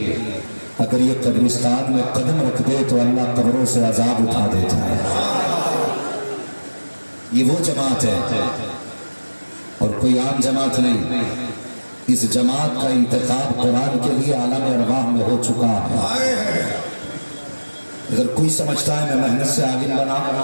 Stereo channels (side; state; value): both; inverted; correlation -1.00